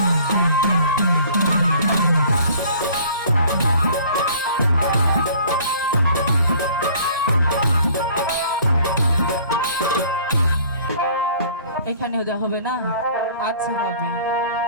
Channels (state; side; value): inverted; both; correlation -0.52